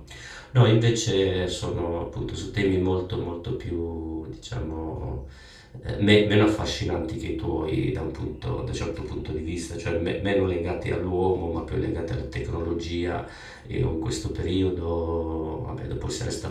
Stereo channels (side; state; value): both; identical; correlation 1.00